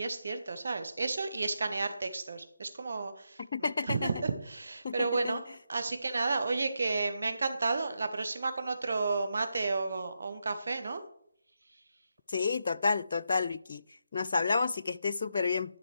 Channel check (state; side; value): inverted; both; correlation -0.84